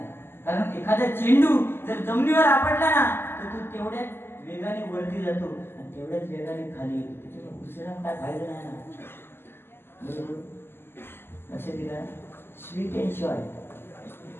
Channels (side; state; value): right; late; 0.11 ms